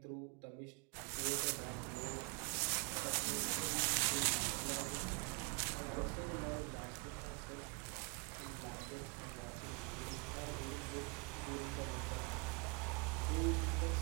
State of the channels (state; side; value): quieter; left; 31.1 dB